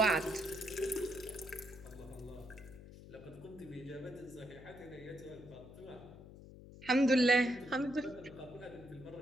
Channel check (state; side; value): noise; left; hum, 16 dB below the sound